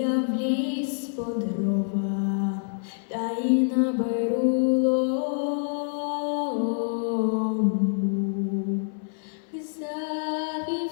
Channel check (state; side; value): silent; right; 58 dB below the other